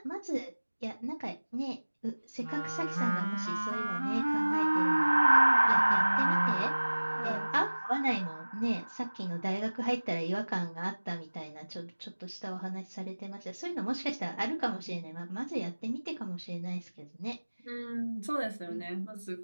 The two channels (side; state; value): both; inverted; correlation -1.00